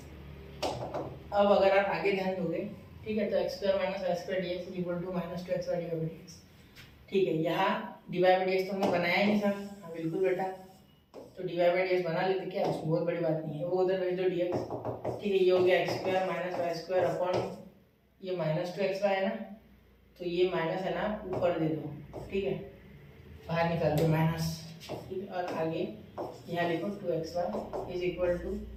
अब अगर आप आगे ध्यान दोगे, ठीक है, तो x square minus y square dx is equal to -2xy dy bye dx। ठीक है, यहाँ dy बाय dx तो हमने बनाया ही नहीं सर। हाँ बिल्कुल बेटा, तो dy बाय dx बना लेते, क्या उसमें बहुत बड़ी बात नहीं है, वो उधर भेज दो dx। ठीक है, ये हो गया x square minus y square upon ये -2xy है ना, तो ये माइनस है ना ऊपर दे दो। ठीक है, बाहर निकाल दो माइनस। ठीक है, और आगे यहाँ लिखो 2xy इज इक्वल टू,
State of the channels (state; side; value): identical; both; correlation 1.00